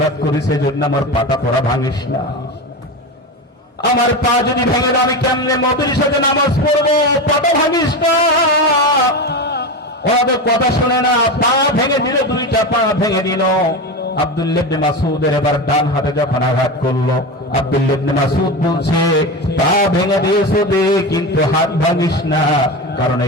করেছে, জন্য আমার পাটা তোরা ভাঙিস না। আমার পা যদি ভেঙে দাও, আমি কেমনে নবীর সাথে নামাজ পড়বো? পাটা ভাঙিস না। ওদের কথা শুনে না, পা ভেঙে দিল, 2টা পা ভেঙে দিল। আব্দুল্লাহ ইবনে মাসউদের এবার ডান হাতে যখন আঘাত করলো, আব্দুল্লাহ ইবনে মাসউদ বলছে, পা ভেঙে দিয়েছো দে, কিন্তু হাত ভাঙিস না, কারণ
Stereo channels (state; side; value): normal; both; correlation 0.21